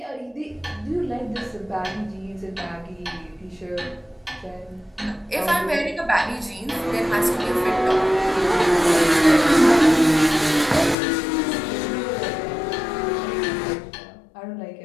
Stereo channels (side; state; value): right; drops out; at 11.0 s